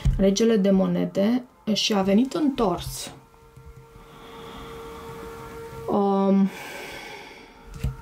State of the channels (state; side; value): identical; both; correlation 1.00